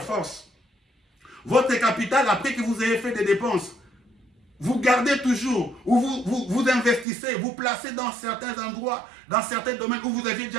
force. Votre capital, après que vous ayez fait des dépenses, vous gardez toujours, ou vous investissez, vous placez dans certains endroits, dans certains domaines où vous aviez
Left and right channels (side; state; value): left; drops out; at 7.1 s